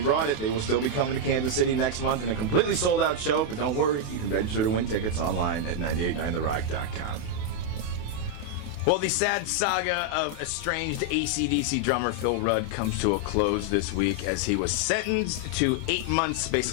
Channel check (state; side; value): late; right; 28 ms